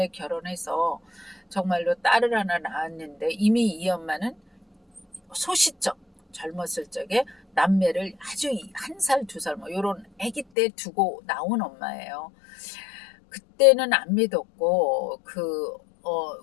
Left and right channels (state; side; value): drops out; right; at 10.5 s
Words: 결혼해서 정말로 딸을 하나 낳았는데 이미 이 엄마는 소시적 젊었을 적에 남매를 아주 1살, 2살 뭐 요런 아기 때 두고 나온 엄마예요. 그때는 안 믿었고 그